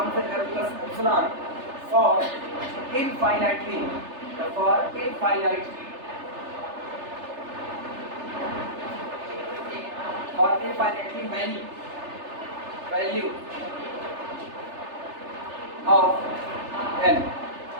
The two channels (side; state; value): left; late; 3.3 ms